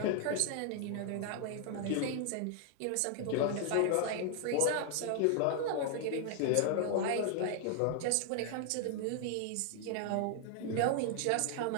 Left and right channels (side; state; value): both; different; correlation 0.00